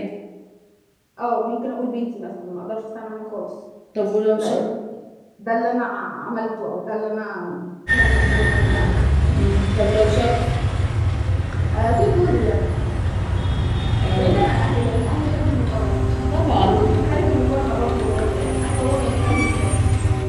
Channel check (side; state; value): both; identical; correlation 1.00